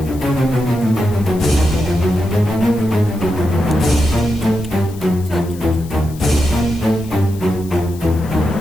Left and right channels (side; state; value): left; noise; hiss, 21 dB below the sound